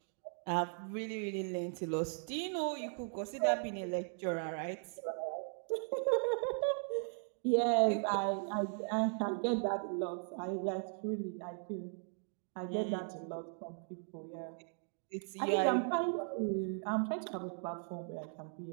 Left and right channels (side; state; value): left; silent; 53 dB below the other